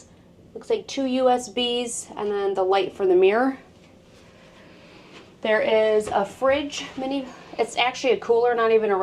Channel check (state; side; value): identical; both; correlation 1.00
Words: Looks like 2 USBs, and then the light for the mirror. There is a fridge, it's actually a cooler, not even